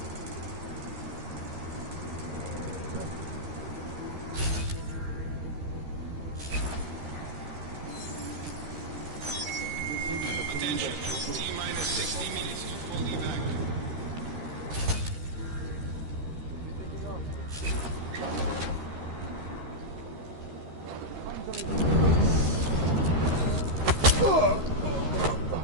Attention. T-minus 60 minutes to full evac.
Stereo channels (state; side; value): late; left; 13 ms